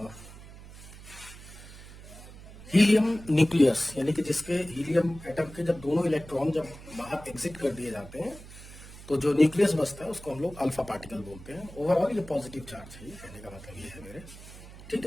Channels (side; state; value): right; noise; hum, 17 dB below the sound